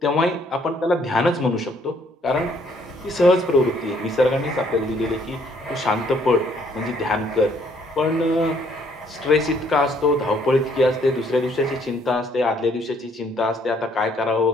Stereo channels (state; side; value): normal; both; correlation 0.65